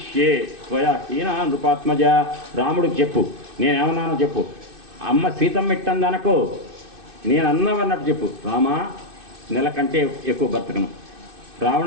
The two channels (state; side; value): late; left; 2.6 ms